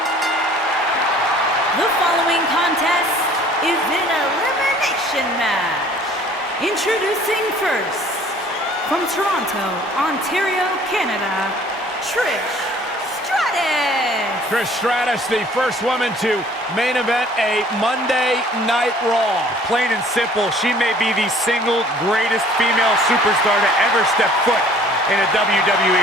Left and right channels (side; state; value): both; normal; correlation 0.53